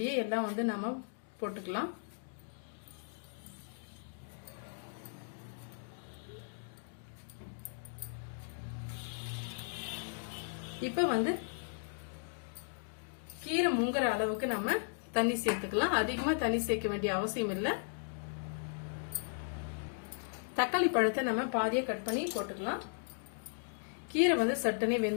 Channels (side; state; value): right; silent; digital silence